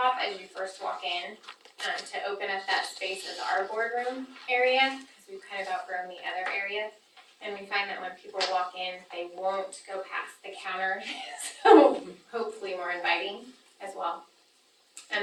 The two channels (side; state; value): both; identical; correlation 1.00